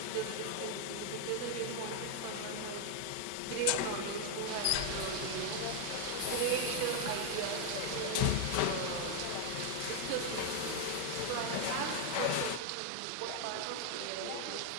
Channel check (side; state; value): both; different; correlation 0.00